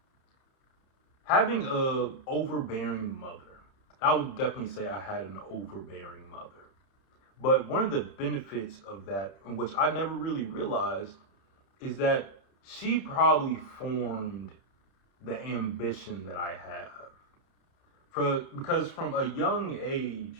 having a overbearing mother. I would definitely say I had an overbearing mother. But one of the benefits of that, which I never really realized, is that she probably formed the ambition that I have. Because from a young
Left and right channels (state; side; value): late; right; 31 ms